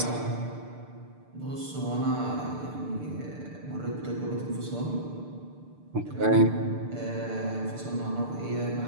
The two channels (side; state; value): left; late; 6.7 ms